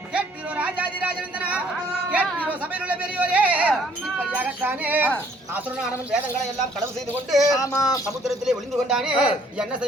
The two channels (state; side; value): normal; both; correlation 0.62